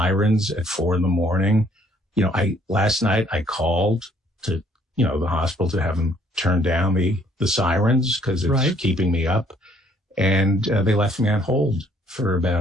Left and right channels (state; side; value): normal; both; correlation 0.63